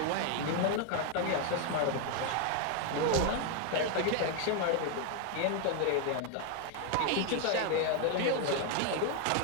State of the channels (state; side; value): different; both; correlation 0.01